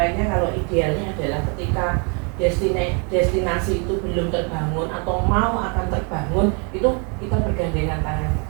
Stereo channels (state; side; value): quieter; left; 35.7 dB